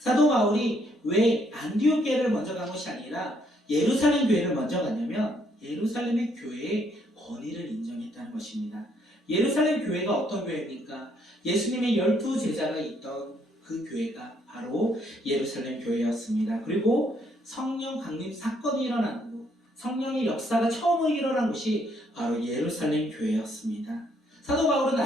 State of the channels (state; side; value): normal; both; correlation 0.70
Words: 바울이 왜 안디옥 교회를 먼저 간 것이 아니라 예루살렘 교회를 먼저 갔냐면 예루살렘의 교회의 권위를 인정했다는 것입니다. 예루살렘 교회가 어떤 교회입니까? 예수님의 12제자가 있던 그 교회가 바로 예루살렘 교회였습니다. 그리고 성령 강림 사건이 일어난 곳, 성령의 역사가 처음 일어난 곳이 바로 예루살렘 교회였습니다. 사도 바울은